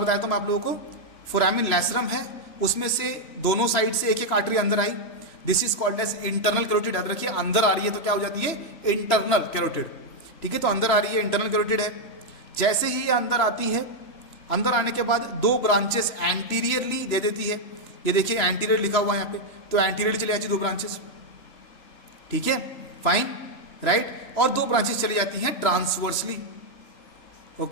था मैं आप लोगों को, फोरामिन लैसरम है, उसमें से दोनों साइड से एक एक आर्टरी अंदर आई, this is called as internal carotid. याद रखिए अंदर आ रही है तो क्या हो जाती है, इंटरनल कैरोटिड। ठीक है, तो अंदर आ रही है, इंटरनल कैरोटिड है। जैसे ही ये अंदर आती है, अंदर आने के बाद दो ब्रांचेस एंटीरियरली दे देती है। ये देखिए एंटीरियर लिखा हुआ है यहाँ पे, तो एंटीरियरली चली जाती है दो ब्रांचेस। ठीक है, फाइन, राइट। और दो ब्रांचेस चली जाती हैं ट्रांसवर्सली।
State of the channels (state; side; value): late; right; 3.0 ms